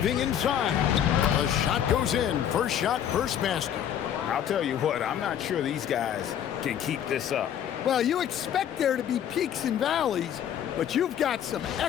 inside. The shot goes in. First shot, first basket. I'll tell you what, I'm not sure these guys can keep this up. Well, you expect there to be peaks and valleys, but you've got some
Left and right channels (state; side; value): quieter; right; 9.7 dB